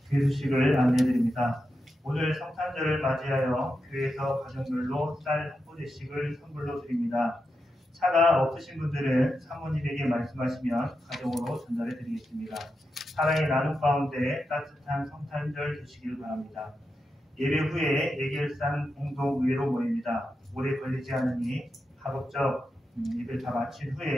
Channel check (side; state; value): both; normal; correlation 0.88